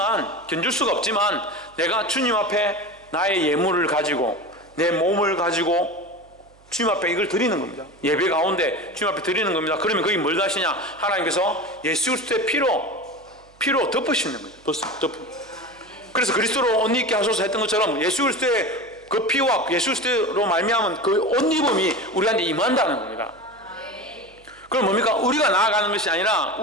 견줄 수가 없지만 내가 주님 앞에 나의 예물을 가지고 내 몸을 가지고 주님 앞에 이걸 드리는 겁니다. 예배 가운데 주님 앞에 드리는 겁니다. 그러면 거기 뭘 하시냐? 하나님께서 예수 그리스도의 피로 덮으시는 거죠. 그래서 그리스도로 옷 입게 하소서 했던 것처럼 예수 그리스도의 그 피와 예수 그리스도로 말미암은 그 옷 입음이 우리한테 임한다는 겁니다. 그럼 뭡니까? 우리가 나아가는 것이 아니라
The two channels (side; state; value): right; noise; hum, 29 dB below the sound